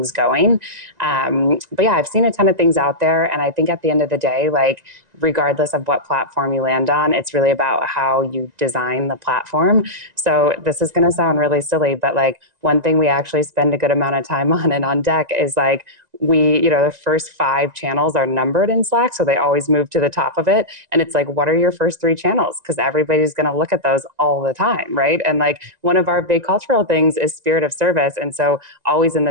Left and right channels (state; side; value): late; left; 1.9 ms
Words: going. But yeah, I've seen a ton of things out there. And I think at the end of the day, like regardless of what platform you land on, it's really about how you design the platform. So this is going to sound really silly, but like one thing we actually spend a good amount of time on and on deck is like the first 5 channels are numbered in Slack, so they always move to the top of it. And it's like, what are your first 3 channels? Because everybody's going to look at those all the time, right? And like one of our big cultural things is spirit of service. And so always in